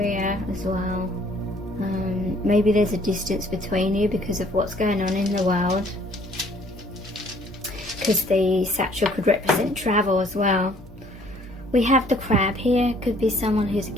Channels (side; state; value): both; normal; correlation 0.59